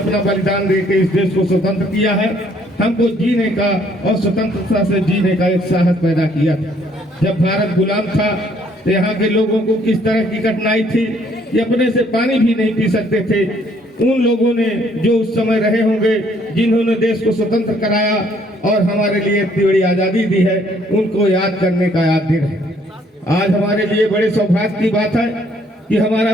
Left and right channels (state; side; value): normal; both; correlation 0.65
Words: बलिदान देकर इस देश को स्वतंत्र किया है, हमको जीने का और स्वतंत्रता से जीने का एक साहस पैदा किया। जब भारत गुलाम था तो यहाँ के लोगों को किस तरह की कठिनाई थी, ये अपने से पानी भी नहीं पी सकते थे। उन लोगों ने जो उस समय रहे होंगे, जिन्होंने देश को स्वतंत्र कराया और हमारे लिए इतनी बड़ी आजादी दी है, उनको याद करने का याद दिन है। आज हमारे लिए बड़े सौभाग्य की बात है कि हमारा